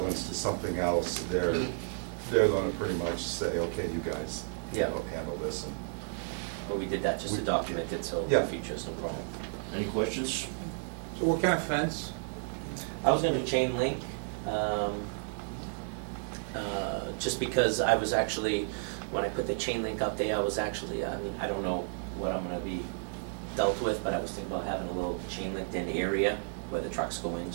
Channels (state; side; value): silent; left; 56 dB below the other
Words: to something else, they're gonna pretty much say, okay, you guys, you Yeah. know, handle this. And But we did that just to document it, so in Yeah. the future, it's no problem. Any questions? So what kind of fence? I was gonna do chain link, just because I was actually, when I put the chain link up there, I was actually, I mean, I don't know what I'm gonna be dealt with, but I was thinking about having a little chain linked in area where the trucks go in,